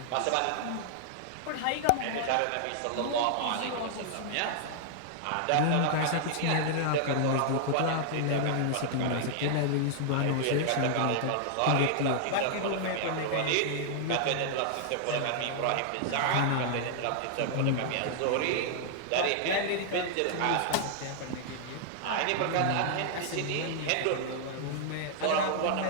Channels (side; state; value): both; different; correlation -0.01